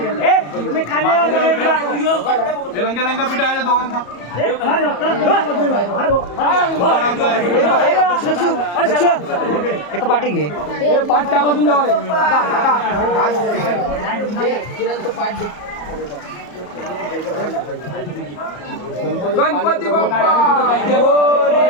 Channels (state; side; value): late; right; 34 ms